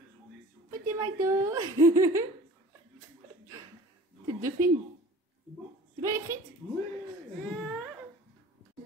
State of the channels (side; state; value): both; normal; correlation 0.44